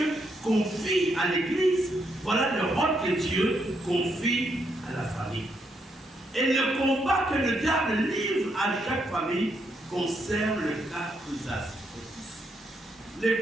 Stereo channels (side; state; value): both; normal; correlation 0.77